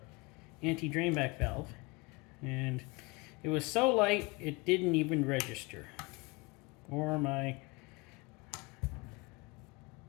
anti-drain back valve, and it was so light it didn't even register, or my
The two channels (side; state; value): right; quieter; 25.8 dB